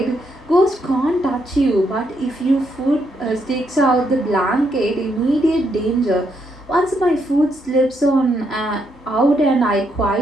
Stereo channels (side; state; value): both; normal; correlation 0.77